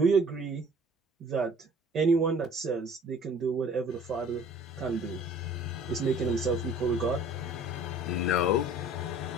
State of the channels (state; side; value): normal; both; correlation 0.50